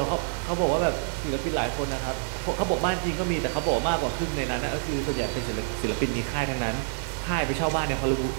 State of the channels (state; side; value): silent; left; 60 dB below the other